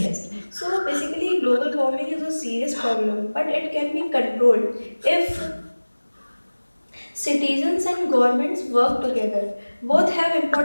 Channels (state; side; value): inverted; both; correlation -1.00